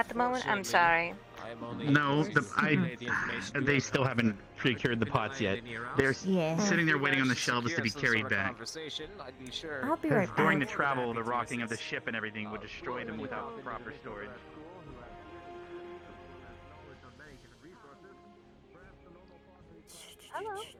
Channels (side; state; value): both; identical; correlation 1.00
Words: the moment? I'm sorry. No, they still haven't procured the pots yet. They're sitting there waiting on the shelves to be carried back. I'll be right During the back. travel, the rocking of the ship and everything would destroy them without proper storage. Hello.